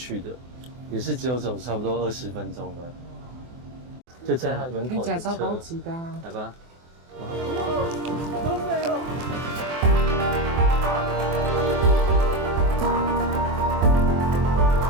的，也是只有走差不多20分钟的。就在他门口的车。听起来超高级的啊。来吧。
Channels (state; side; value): late; left; 24 ms